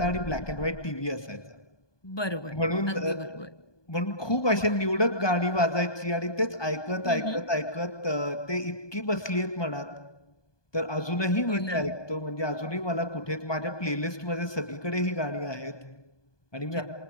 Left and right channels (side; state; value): right; late; 1.2 ms